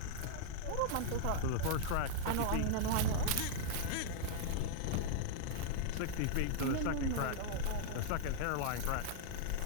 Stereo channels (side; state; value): both; different; correlation -0.01